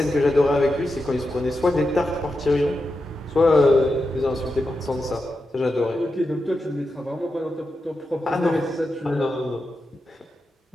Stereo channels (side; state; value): both; normal; correlation 0.89